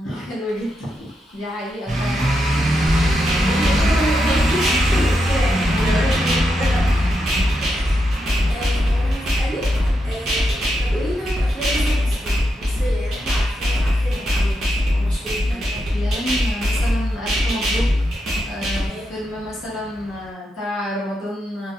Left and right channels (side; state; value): both; normal; correlation 0.84